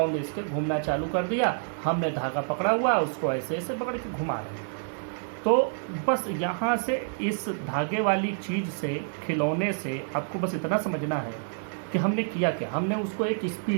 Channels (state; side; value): silent; left; digital silence